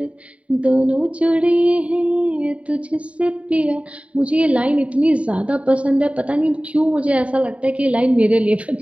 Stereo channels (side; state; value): left; late; 0.065 ms